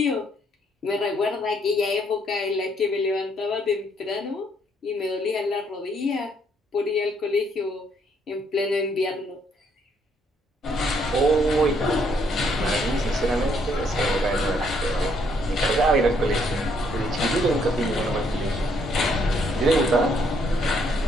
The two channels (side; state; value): both; normal; correlation 0.70